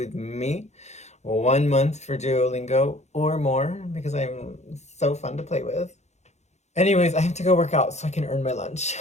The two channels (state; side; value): late; right; 0.33 ms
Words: me. 1 month for Duolingo or more because I'm so fun to play with. Anyways, I have to go work out so I can earn my lunch.